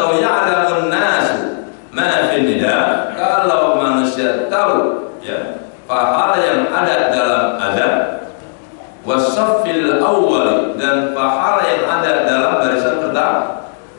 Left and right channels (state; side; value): silent; right; digital silence